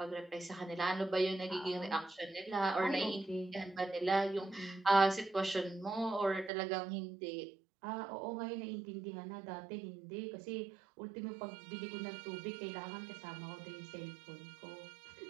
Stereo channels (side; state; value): left; drops out; at 6.5 s